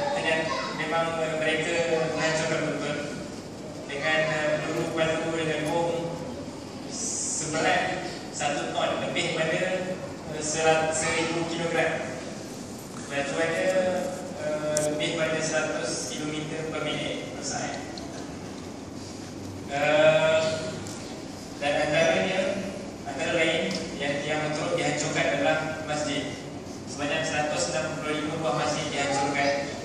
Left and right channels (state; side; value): identical; both; correlation 1.00